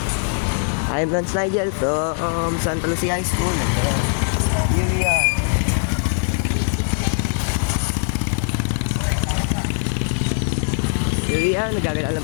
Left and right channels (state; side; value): silent; right; digital silence